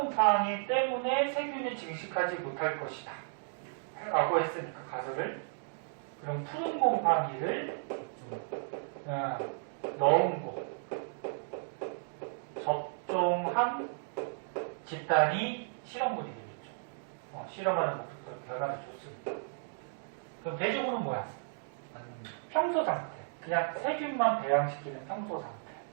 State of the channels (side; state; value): left; silent; digital silence